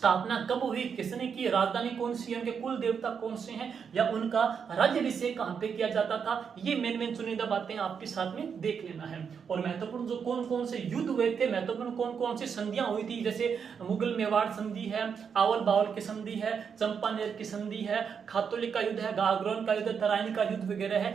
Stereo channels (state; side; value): quieter; left; 6.7 dB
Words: कब हुई, किसने की, राजधानी कौन सी है, उनके कुल देवता कौन से हैं, या उनका राज्याभिषेक कहां पे किया जाता था, ये मेन चुनिंदा बातें आपके साथ में देख लेना है। और महत्वपूर्ण जो कौन कौन से युद्ध हुए थे, महत्वपूर्ण कौन कौन सी संधियां हुई थी, जैसे मुगल मेवाड़ संधि है, आवल बावल की संधि है, चंपानेर की संधि है, खातोली का युद्ध है, गागरोन का युद्ध, तराइन का युद्ध वगैरह